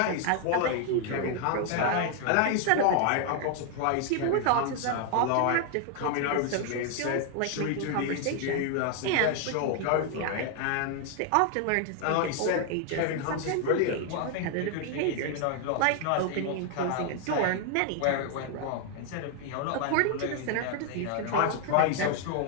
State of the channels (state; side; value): different; both; correlation 0.00